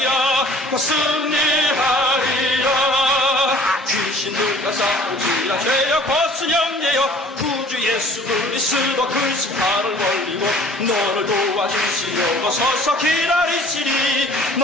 승리하리라. 귀신들과 싸울지라 죄악 벗은 영예여 구주 예수 그리스도 그 심판을 멀리고 너를 도와주시려고 서서 기다리시니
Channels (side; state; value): both; normal; correlation 0.51